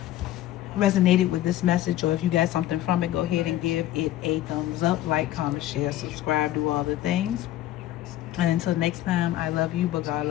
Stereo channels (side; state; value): right; quieter; 13.8 dB